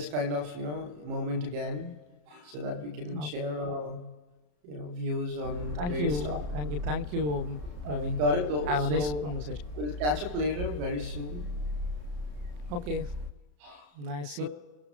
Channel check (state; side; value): late; left; 34 ms